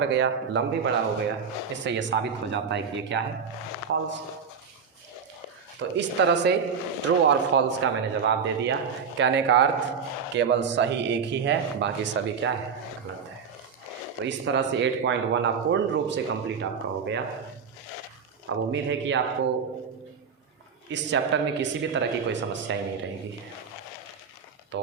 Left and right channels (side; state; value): left; quieter; 6.2 dB